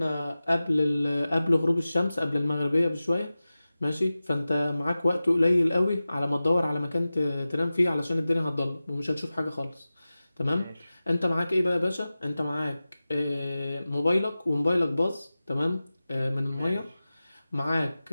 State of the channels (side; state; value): both; inverted; correlation -0.96